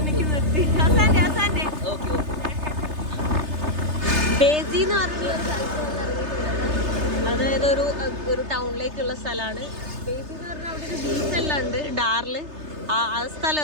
നിർത്തി. അസാൻഡേ ബേസി എന്ന് പറഞ്ഞിട്ടുള്ള ഒരു സ്ഥലത്ത് ഇറങ്ങിയിട്ടുള്ളത്. അതായത് ഒരു ടൗണിലേക്കുള്ള സ്ഥലമാണ് ബേസി എന്ന് പറഞ്ഞാൽ. അവിടെ ഒരു ബീച്ചെല്ലാം ഉണ്ട്, ഡാറിൽ. ആ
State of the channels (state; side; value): late; left; 3.3 ms